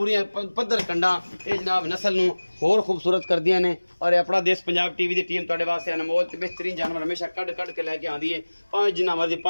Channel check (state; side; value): inverted; both; correlation -1.00